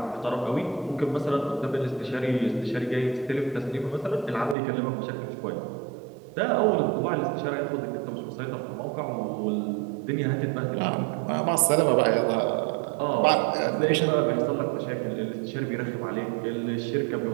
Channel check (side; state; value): left; drops out; at 4.5 s